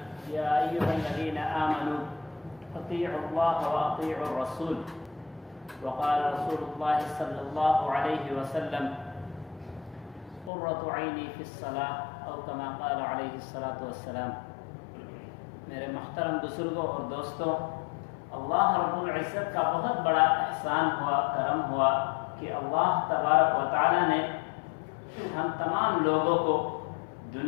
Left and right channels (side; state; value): right; drops out; at 10.5 s